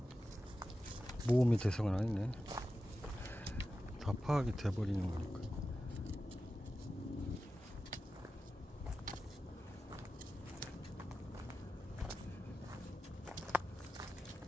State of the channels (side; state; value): both; normal; correlation 0.93